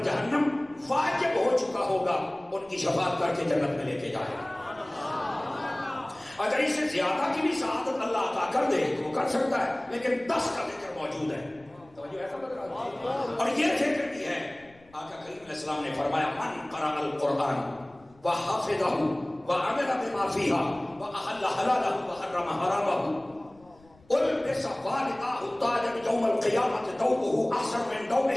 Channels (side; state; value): left; noise; rumble, 28 dB below the sound